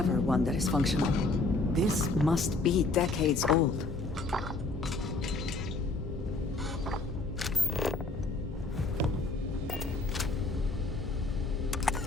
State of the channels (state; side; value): quieter; right; 3.4 dB